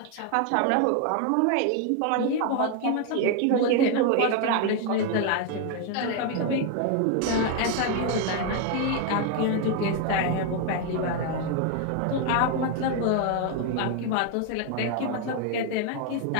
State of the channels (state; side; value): different; both; correlation 0.01